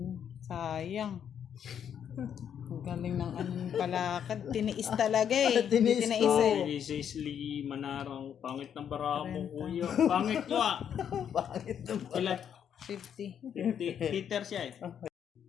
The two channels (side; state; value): right; quieter; 8.6 dB